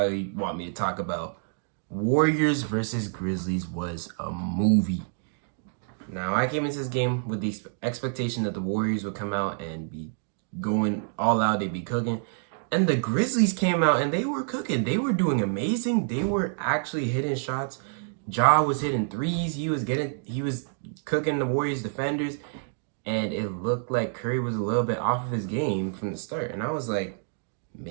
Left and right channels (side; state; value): left; silent; digital silence